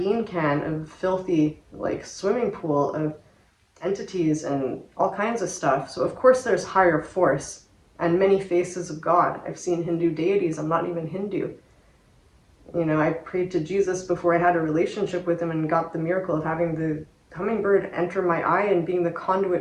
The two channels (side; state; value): both; identical; correlation 1.00